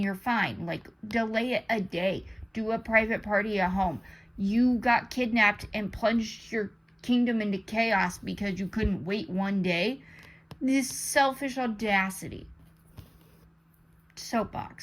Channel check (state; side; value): identical; both; correlation 1.00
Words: you're fine. Like, delay it a day. Do a private party at home. You got kidnapped and plunged your kingdom into chaos because you couldn't wait one day. This selfish audacity.